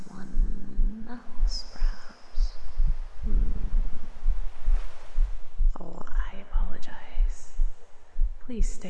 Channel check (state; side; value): identical; both; correlation 1.00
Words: else, perhaps. Oh, I apologize. Please